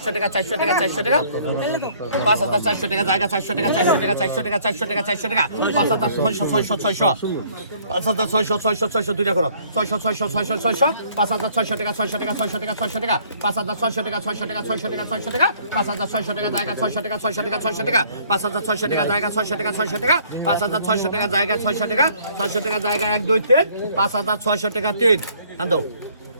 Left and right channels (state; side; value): inverted; both; correlation -0.60